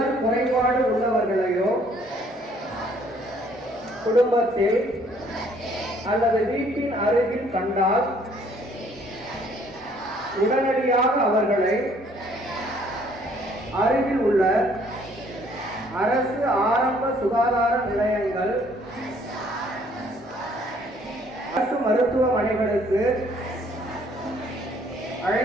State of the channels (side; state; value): both; normal; correlation 0.62